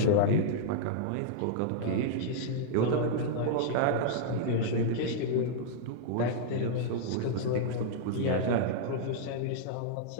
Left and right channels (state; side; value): different; both; correlation -0.02